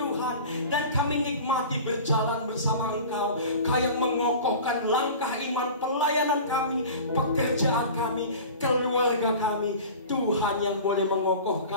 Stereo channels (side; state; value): both; inverted; correlation -0.38